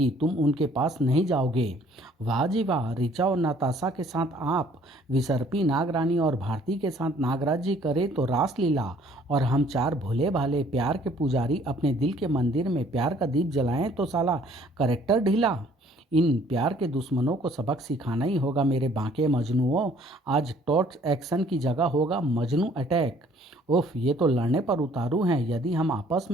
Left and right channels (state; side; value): normal; both; correlation 0.58